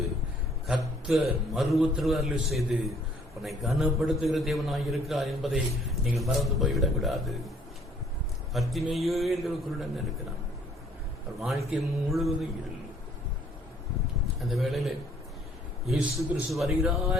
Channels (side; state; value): both; normal; correlation 0.60